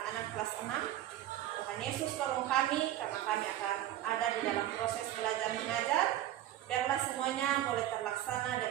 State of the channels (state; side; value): quieter; left; 13.1 dB